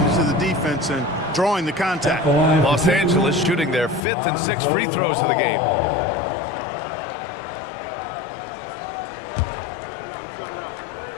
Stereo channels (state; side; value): drops out; right; at 4.0 s